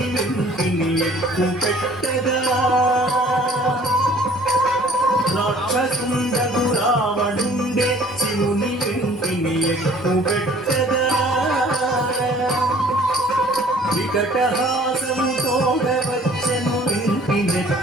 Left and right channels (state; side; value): normal; both; correlation 0.54